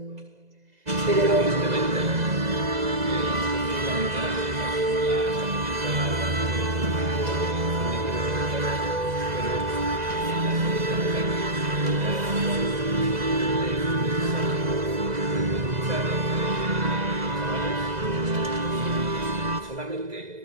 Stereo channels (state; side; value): late; left; 2.0 ms